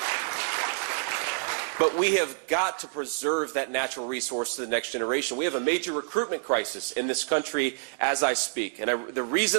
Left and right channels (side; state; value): left; silent; digital silence